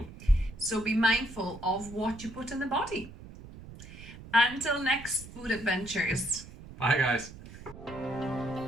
So be mindful of what you put in the body. Until next food adventures. Bye, guys.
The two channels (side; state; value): right; noise; rumble, 16 dB below the sound